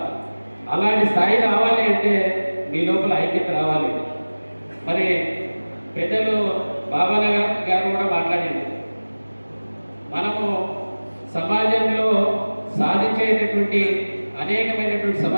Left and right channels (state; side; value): inverted; both; correlation -1.00